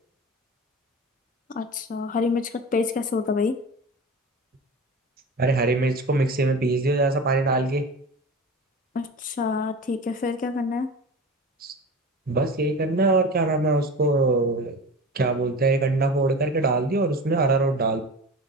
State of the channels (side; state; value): both; normal; correlation 0.32